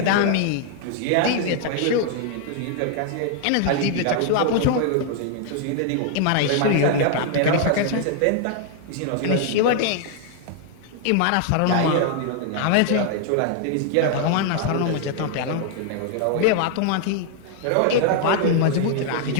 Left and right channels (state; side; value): different; both; correlation 0.00